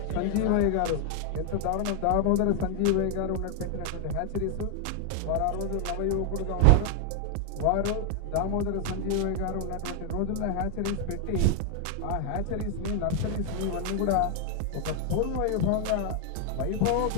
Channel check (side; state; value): both; different; correlation 0.00